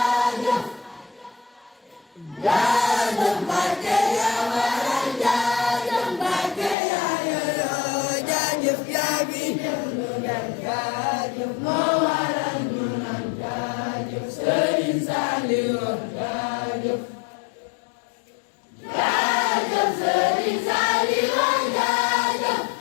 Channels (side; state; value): right; drops out; at 6.8 s